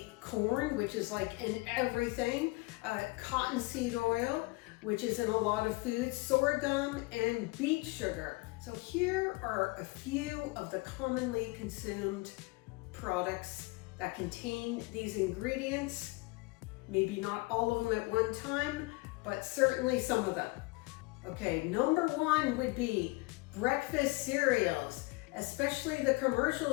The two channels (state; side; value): quieter; right; 24.9 dB